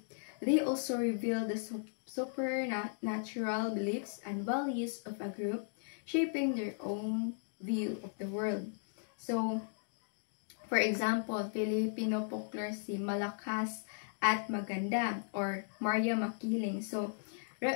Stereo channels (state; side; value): silent; right; digital silence